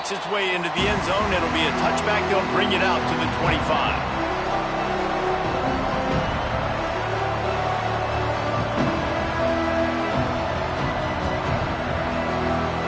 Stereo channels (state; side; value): identical; both; correlation 1.00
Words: its way into the end zone, it'll be a touchback. They'll bring it out to the 25.